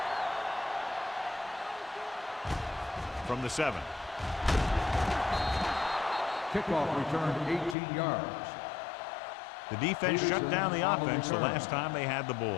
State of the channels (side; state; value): right; drops out; at 7.8 s